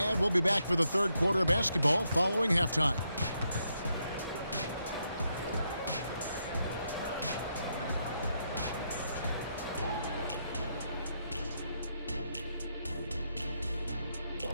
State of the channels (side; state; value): both; inverted; correlation -0.79